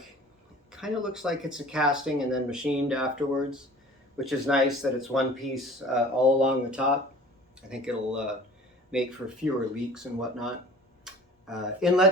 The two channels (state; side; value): normal; both; correlation 0.45